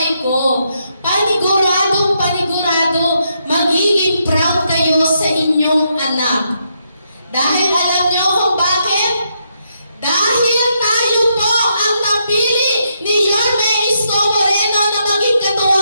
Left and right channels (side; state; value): both; inverted; correlation -0.78